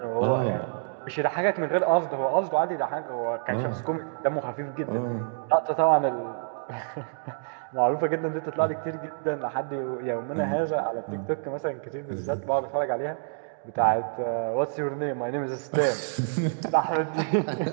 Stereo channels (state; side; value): silent; left; digital silence